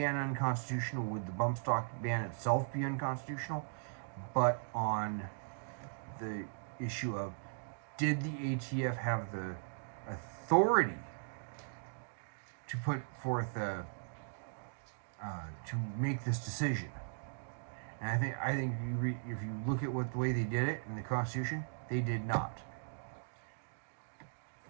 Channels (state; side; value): silent; left; digital silence